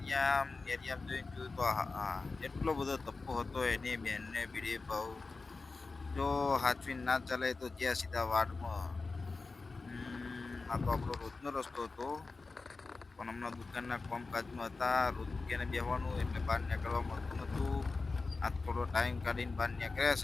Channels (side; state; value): right; quieter; 3.9 dB